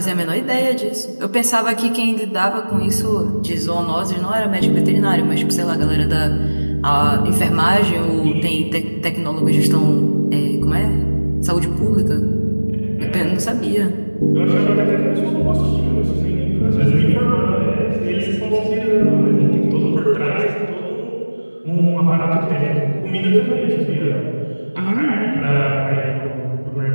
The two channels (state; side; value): inverted; both; correlation -1.00